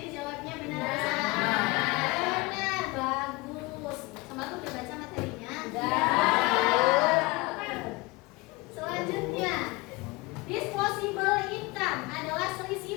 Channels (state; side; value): quieter; right; 23.4 dB